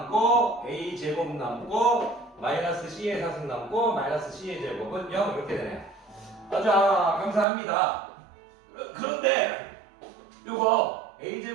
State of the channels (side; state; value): left; drops out; at 7.5 s